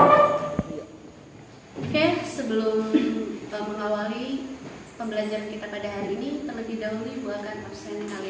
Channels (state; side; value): identical; both; correlation 1.00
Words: Oke, sebelum mengawali pembelajaran kita pada hari ini, terlebih dahulu Ibu akan absen